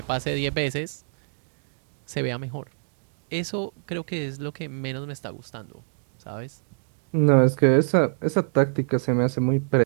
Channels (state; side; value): silent; left; digital silence